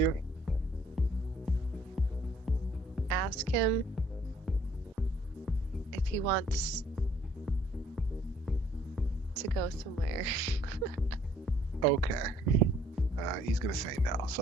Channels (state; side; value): normal; both; correlation 0.61